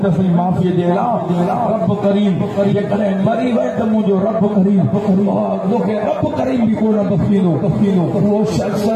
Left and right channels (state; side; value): identical; both; correlation 1.00